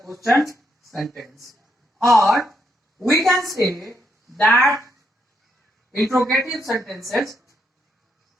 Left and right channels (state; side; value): normal; both; correlation 0.77